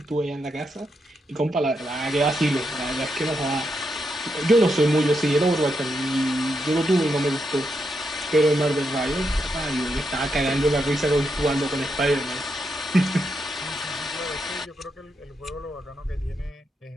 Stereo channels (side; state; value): both; normal; correlation 0.82